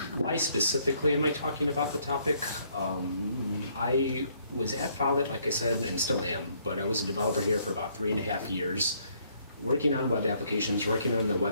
Why specifically am I talking about the topic? I was at Follett, like I said, and still am, but I was a developer here for about 3.5 years, working on web applications, working on the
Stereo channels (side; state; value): both; inverted; correlation -0.67